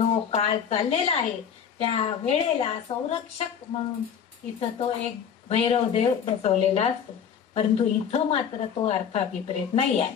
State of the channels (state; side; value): quieter; right; 7.8 dB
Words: काळ चाललेला आहे त्या वेळेला संरक्षक म्हणून इथं तो एक भैरव देव बसवलेला असतो. परंतु इथं मात्र तो अर्थ अभिप्रेत नाही आहे.